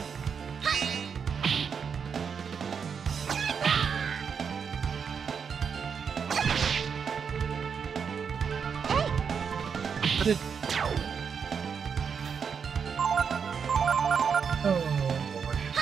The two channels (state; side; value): quieter; left; 6.5 dB